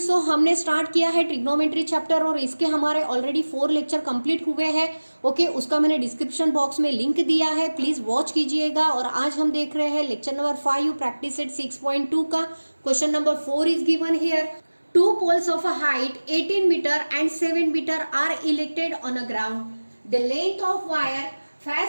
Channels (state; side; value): inverted; both; correlation -1.00